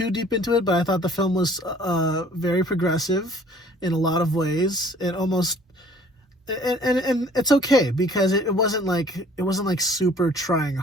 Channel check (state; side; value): normal; both; correlation 0.54